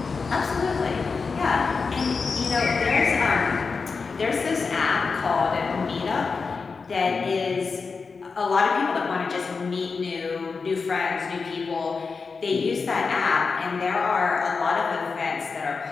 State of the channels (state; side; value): quieter; right; 4.8 dB